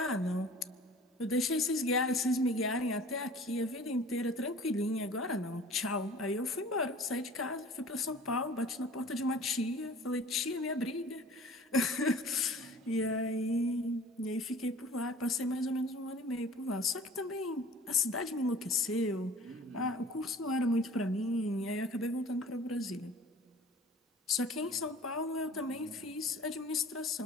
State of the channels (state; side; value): normal; both; correlation 0.46